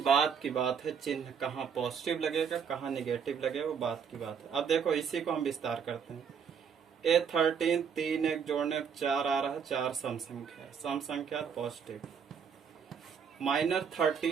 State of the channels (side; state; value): left; quieter; 7.0 dB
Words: बात है, चिन्ह कहाँ पॉजिटिव लगेगा कहाँ निगेटिव लगेगा वो बात की बात है। अब देखो इसी को हम विस्तार करते हैं। A13 3 एक जोड़ने 4 आ रहा है, 4 सम संख्या है, सम संख्या पॉजिटिव। माइनर